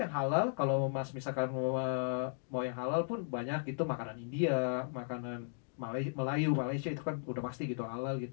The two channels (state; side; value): silent; right; digital silence